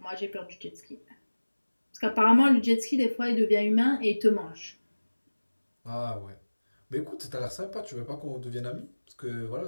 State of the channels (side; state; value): both; inverted; correlation -1.00